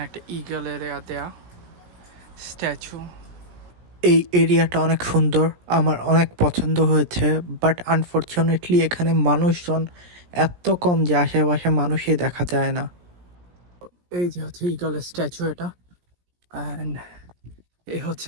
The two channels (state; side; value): late; left; 17 ms